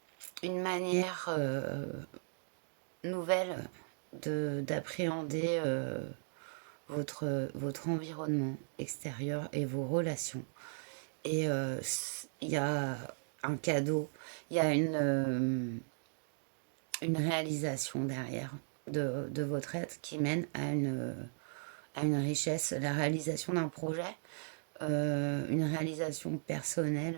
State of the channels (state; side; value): silent; left; digital silence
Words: une manière nouvelle d'appréhender votre environnement extérieur et vos relations. Et il y a un cadeau, il y a une réalisation derrière de votre être qui mène à une richesse, la réalisation d'un projet, une réalisation